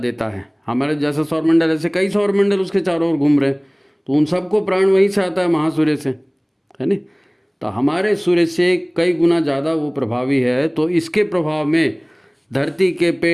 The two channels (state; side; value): identical; both; correlation 1.00